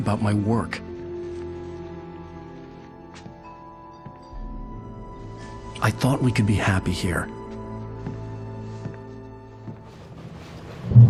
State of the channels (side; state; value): both; identical; correlation 1.00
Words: my work. I thought we could be happy here.